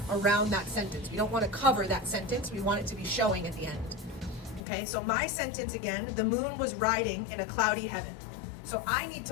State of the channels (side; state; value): right; drops out; at 4.6 s